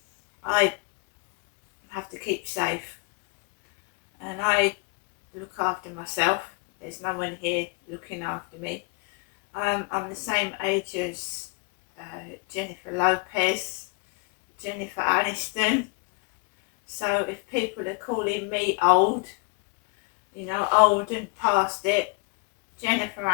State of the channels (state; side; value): quieter; right; 30.2 dB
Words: I have to keep safe, and I look after myself. There's no one here looking after me. I'm the same age as Jennifer Lopez, Jennifer Aniston, So if people are calling me old, old and past it, Jennifer